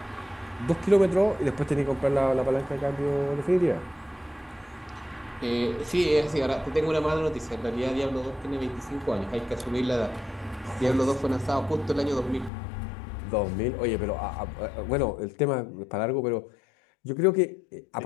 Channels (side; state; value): right; drops out; at 12.5 s